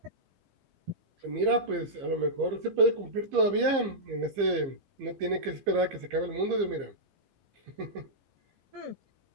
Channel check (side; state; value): left; late; 15 ms